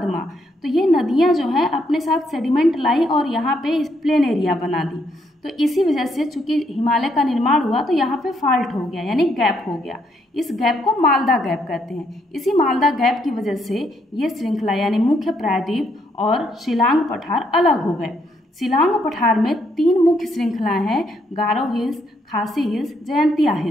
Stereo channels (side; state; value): both; normal; correlation 0.73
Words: तो ये नदियाँ जो हैं अपने साथ सेडिमेंट लाई और यहाँ पे प्लेन एरिया बना दी। तो इसी वजह से चूंकि हिमालय का निर्माण हुआ तो यहाँ पे फॉल्ट हो गया, यानी गैप हो गया। इस गैप को मालदा गैप कहते हैं। इसी मालदा गैप की वजह से ये श्रृंखला यानी मुख्य प्रायद्वीप और शिलांग पठार अलग हो गए। शिलांग पठार में 3 मुख्य श्रृंखलाएं हैं, गारो हिल्स, खासी हिल्स, जयंतिया